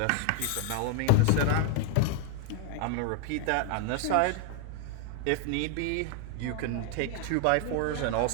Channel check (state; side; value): different; both; correlation 0.00